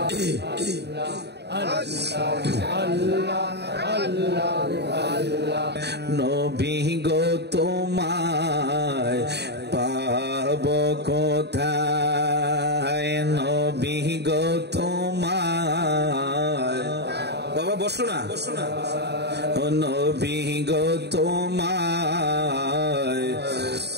अल्लाह নবী গো তোমায় পাব কোথায়, নবী গো তোমায়। বাবা বসো না, ও নবী গো তোমায়।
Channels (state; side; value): late; left; 0.49 ms